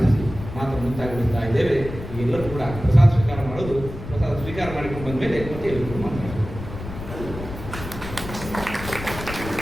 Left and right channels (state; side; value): noise; left; rumble, 10 dB below the sound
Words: ಮಾತ್ರ ಮುಂತಾಗುತ್ತಾ ಇದ್ದೇವೆ. ಎಲ್ಲರೂ ಕೂಡ ಪ್ರಸಾದ ಸ್ವೀಕಾರ ಮಾಡೋದು, ಪ್ರಸಾದ ಸ್ವೀಕಾರ ಮಾಡಿಕೊಂಡು ಬಂದ ಮೇಲೆ ಮತ್ತೆ ಎಲ್ಲರೂ ಮಾತಾಡೋದು.